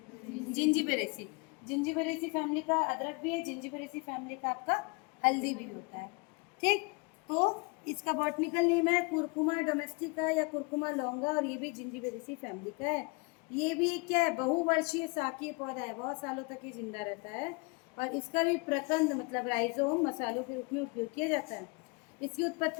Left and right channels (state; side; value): quieter; right; 29.8 dB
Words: जिंजीबेरेसी। जिंजीबेरेसी फैमिली का अदरक भी है, जिंजीबेरेसी फैमिली का आपका हल्दी भी होता है। ठीक। तो इसका बॉटनिकल नेम है कुरकुमा डोमेस्टिका या कुरकुमा लौंगा, और ये भी जिंजीबेरेसी फैमिली का है। ये भी क्या है, बहुवर्षीय शाकीय पौधा है, बहुत सालों तक ये जिंदा रहता है। और इसका भी प्रकंद मतलब राइजोम मसालों के रूप में उपयोग किया जाता है। इसकी